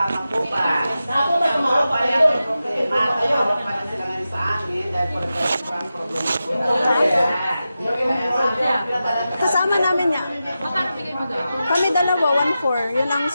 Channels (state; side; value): inverted; both; correlation -0.92